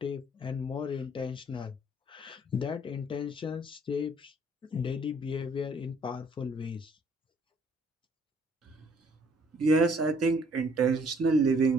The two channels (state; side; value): normal; both; correlation 0.62